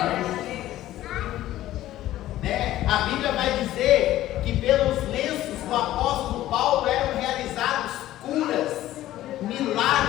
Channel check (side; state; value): right; quieter; 14.3 dB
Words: Né? A Bíblia vai dizer que pelos lenços do apóstolo Paulo eram realizados curas, milagres.